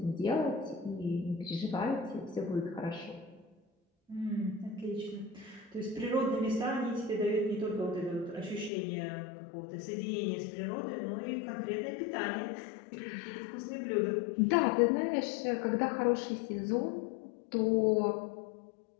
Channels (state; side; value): drops out; right; at 8.7 s